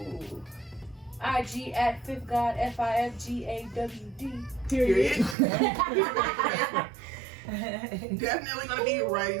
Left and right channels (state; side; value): drops out; left; at 5.4 s